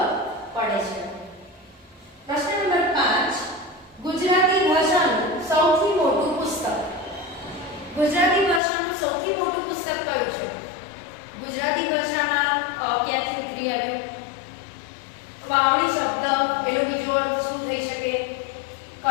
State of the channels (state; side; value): drops out; right; at 8.6 s